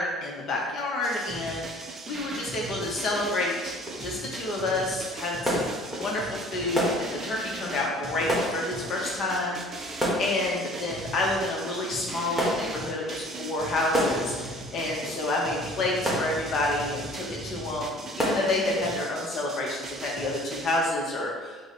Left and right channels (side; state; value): both; normal; correlation 0.51